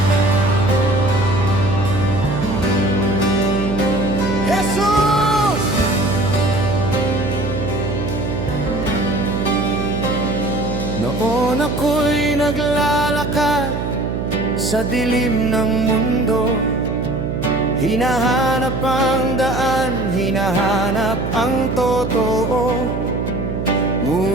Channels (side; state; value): right; noise; hum, 3 dB below the sound